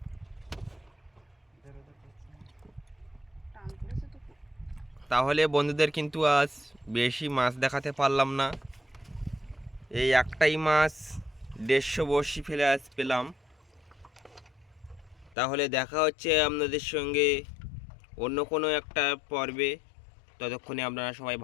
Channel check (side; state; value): right; drops out; at 15.4 s